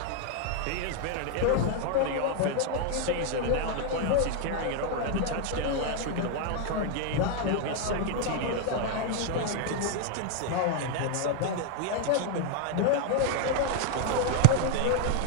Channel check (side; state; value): both; different; correlation 0.00